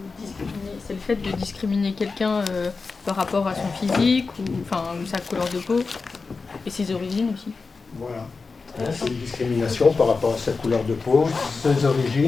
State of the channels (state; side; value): quieter; right; 4.4 dB